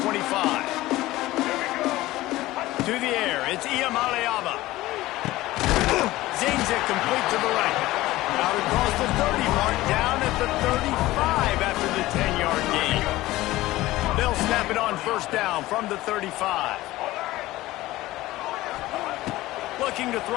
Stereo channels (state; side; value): quieter; right; 17.4 dB